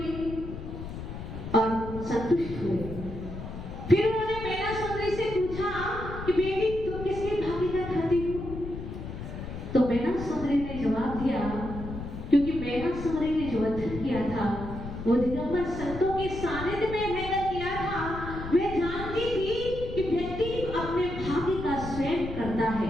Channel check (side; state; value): left; noise; rumble, 9 dB below the sound